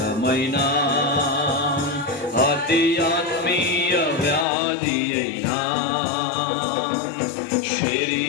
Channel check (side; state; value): right; drops out; at 4.5 s